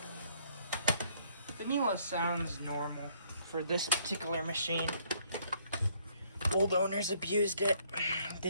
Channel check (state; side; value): inverted; both; correlation -0.65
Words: The Miele sounds normal for this particular machine. Old owners abused it,